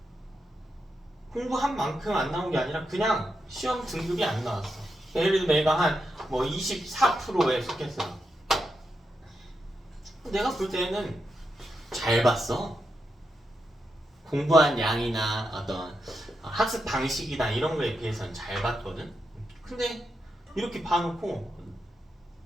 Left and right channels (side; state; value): both; normal; correlation 0.85